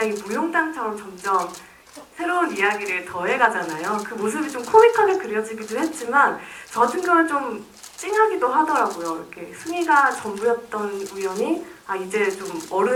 무용담처럼 점점 새로운 이야기를 더해가잖아요. 그 모습이 좀 코믹하게 그려지기도 했지만 저 같은 경우는 좀 찡하기도 하더라고요. 이렇게 승희가 전부였던 우연이 이제 좀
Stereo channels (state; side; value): identical; both; correlation 1.00